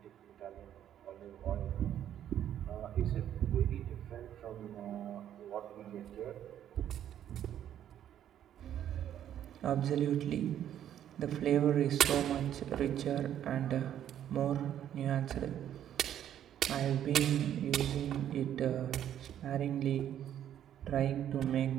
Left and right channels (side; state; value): left; quieter; 10.6 dB